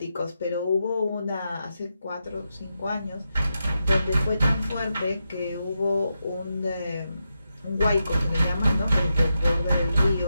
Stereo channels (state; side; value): inverted; both; correlation -0.86